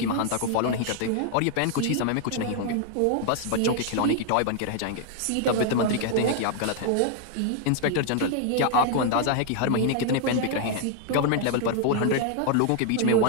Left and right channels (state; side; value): different; both; correlation 0.00